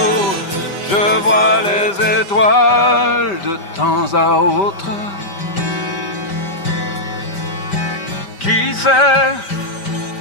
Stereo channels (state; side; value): late; right; 5.1 ms